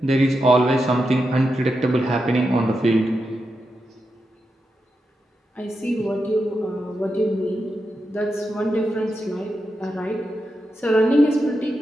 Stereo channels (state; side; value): normal; both; correlation 0.87